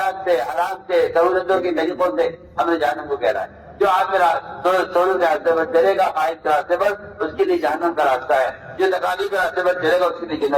سے، حرام سے، سہولتوں کے طریقوں سے ہم نے جہنم کو گھیرا ہے۔ جو آپ سہولت کے راستے پر چلے گا، خواہش کے راستے پر، اس کے لیے جہنم کا راستہ ہے۔ جو تکالیف کے راستے پر چلے گا اس کے لیے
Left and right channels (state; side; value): identical; both; correlation 1.00